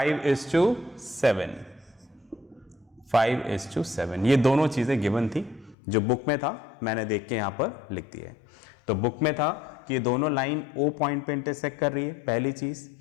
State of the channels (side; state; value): right; drops out; at 5.8 s